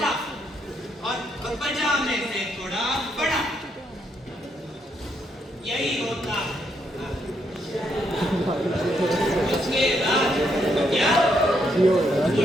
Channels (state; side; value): normal; both; correlation 0.76